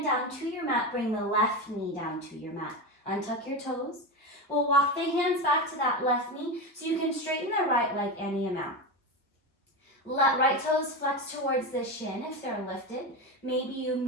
down to your mat. Bring the left knee down to your mat. Untuck your toes. We'll walk the hands back to that left knee so you can straighten the right leg any amount. Let right toes flex towards the shin if they're lifted. Maybe you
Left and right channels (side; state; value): both; normal; correlation 0.19